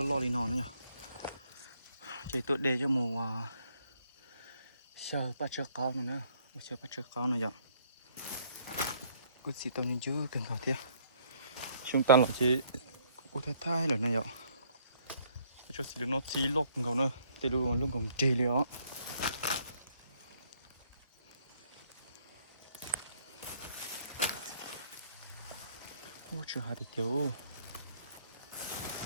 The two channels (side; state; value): both; inverted; correlation -0.64